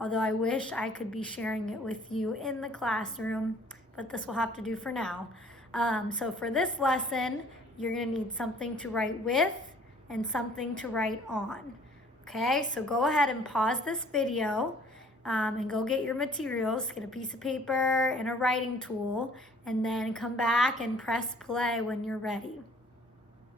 I wish I could be sharing it with you in the classroom, but this will have to do for now. So for this lesson, you're going to need something to write with and something to write on. Okay, so go ahead and pause this video and go get your materials, get a piece of paper and a writing tool, and then come back and press play when you're ready.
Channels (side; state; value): both; normal; correlation 0.54